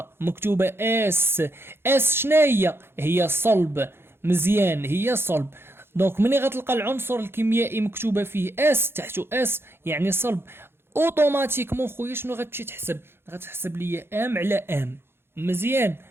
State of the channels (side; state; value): left; late; 0.11 ms